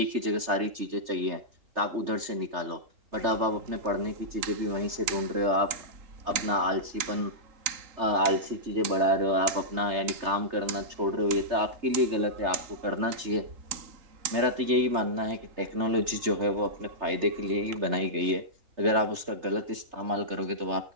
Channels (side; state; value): left; late; 3.3 ms